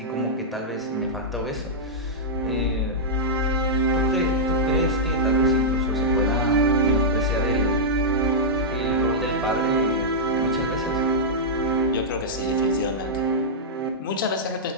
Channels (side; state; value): both; normal; correlation -0.10